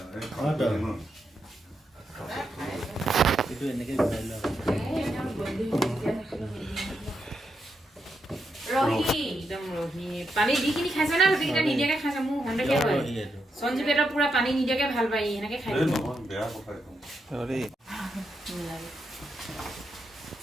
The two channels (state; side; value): normal; both; correlation 0.83